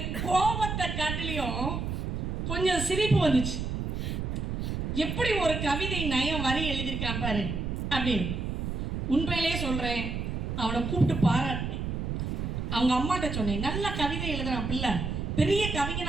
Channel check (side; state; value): right; noise; rumble, 2 dB below the sound